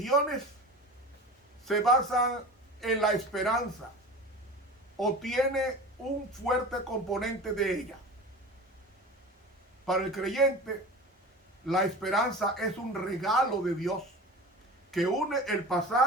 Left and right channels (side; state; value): both; normal; correlation 0.34